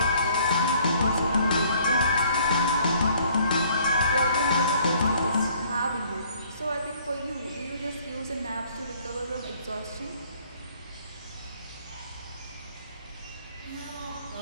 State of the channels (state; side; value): inverted; both; correlation -0.60